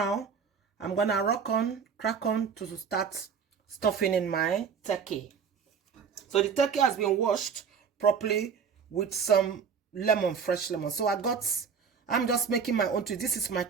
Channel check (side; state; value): left; quieter; 6.4 dB